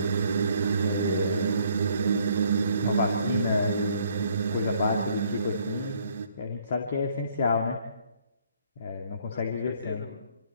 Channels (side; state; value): both; inverted; correlation -0.64